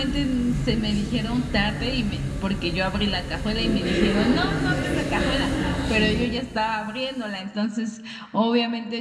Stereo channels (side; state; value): both; identical; correlation 1.00